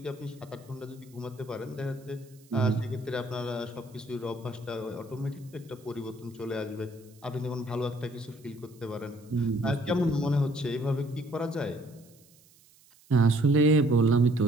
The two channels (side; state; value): right; noise; hiss, 28 dB below the sound